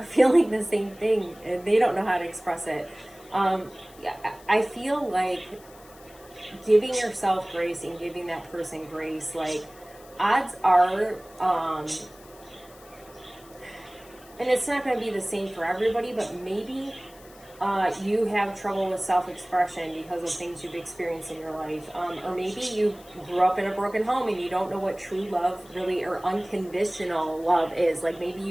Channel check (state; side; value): noise; left; hiss, 24 dB below the sound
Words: feeling the same thing and they don't know how to express it. I feel like giving yourself grace and giving that person grace, like odds are, and it's not going to be the same for everybody, but maybe you have trouble with self-expression because of things you've experienced in your life, or maybe you grew up in a broken home and you don't know what true love really, or unconditional love is. Like maybe